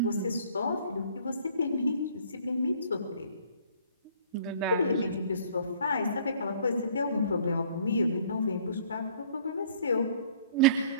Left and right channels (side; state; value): both; inverted; correlation -0.54